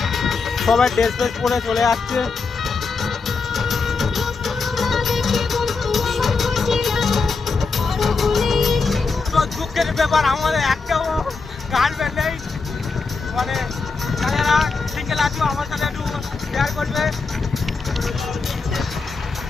সবাই ড্রেস ফ্রেস পরে চলে যাচ্ছে। তো দুঃখের ব্যাপার, আমাদের একটাও গার্লফ্রেন্ড নেই। মানে যারা সিঙ্গেল আছো আমার সাথে একটু শেয়ার করবে।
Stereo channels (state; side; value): quieter; right; 4.5 dB